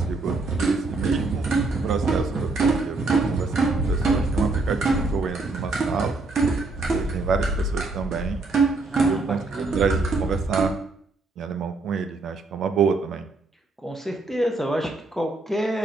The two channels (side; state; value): left; quieter; 3.5 dB